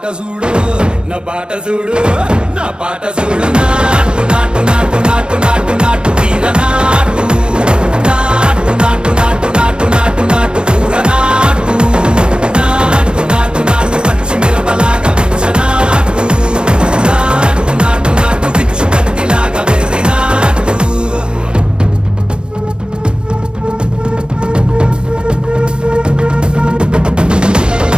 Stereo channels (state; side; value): late; left; 0.051 ms